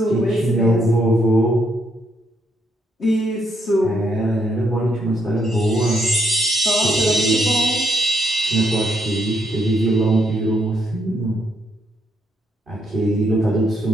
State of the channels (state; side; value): normal; both; correlation 0.75